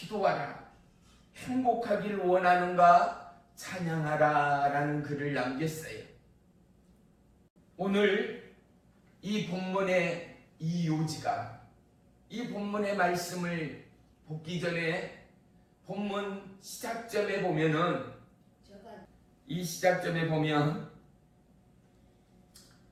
행복하기를 원하는가? 찬양하라 라는 글을 남겼어요. 오늘 이 본문의 이 요지가 이 본문의 말씀을 보기 전에 본문 시작점에 보면은 이 시작점에 보면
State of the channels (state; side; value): identical; both; correlation 1.00